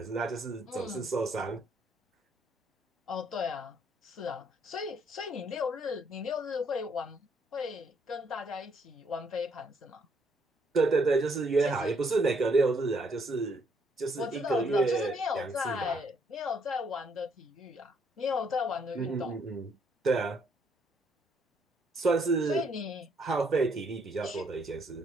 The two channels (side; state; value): both; normal; correlation 0.69